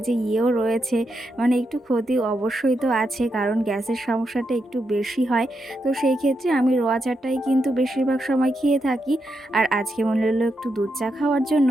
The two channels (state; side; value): normal; both; correlation 0.84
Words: যে ইয়েও রয়েছে, মানে একটু ক্ষতি অবশ্যই তো আছে, কারণ গ্যাসের সমস্যাটা একটু বেশি হয়। তো সেই ক্ষেত্রে আমি রোয়া চাটাই কিন্তু বেশিরভাগ সময় খেয়ে থাকি। আর আজকে মনে হলো একটু দুধ চা খাওয়ার জন্য,